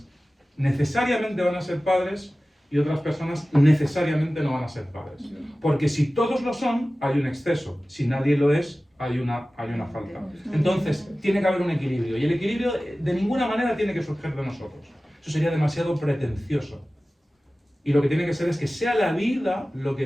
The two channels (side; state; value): both; normal; correlation 0.96